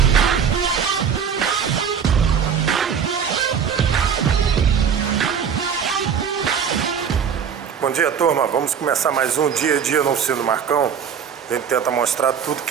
Bom dia, turma. Vamos começar mais um dia a dia na oficina do Marcão. A gente tenta mostrar tudo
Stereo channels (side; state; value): left; quieter; 7.3 dB